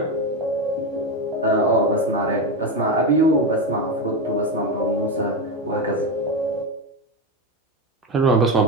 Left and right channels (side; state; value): both; normal; correlation 0.13